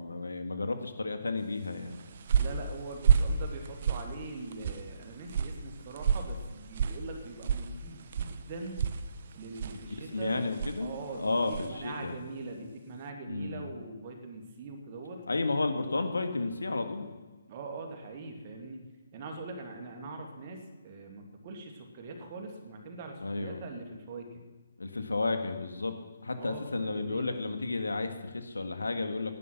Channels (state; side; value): inverted; both; correlation -0.77